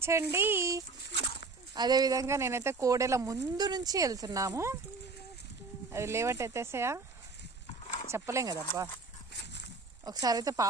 అదేవిధంగా నేనైతే కోడెల ముందు నుంచి వెళ్తున్నాము. అది లేవట్ ఎత్తేసాయా చెప్పలేం కదబ్బా. ఒకసారి అయితే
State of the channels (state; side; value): quieter; left; 4.0 dB